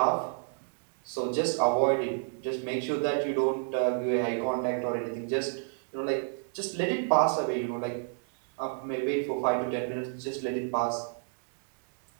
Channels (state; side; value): silent; left; digital silence